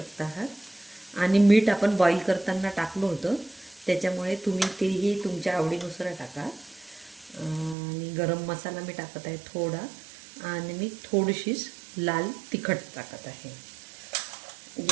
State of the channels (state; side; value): drops out; left; at 7.8 s